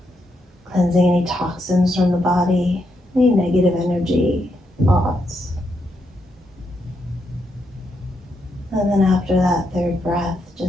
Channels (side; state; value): both; normal; correlation 0.81